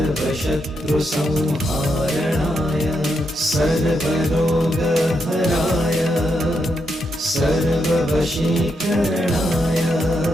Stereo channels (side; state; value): both; normal; correlation 0.82